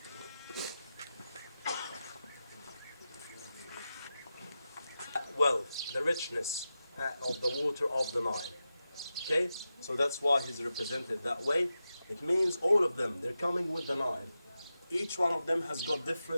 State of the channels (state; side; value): inverted; both; correlation -0.91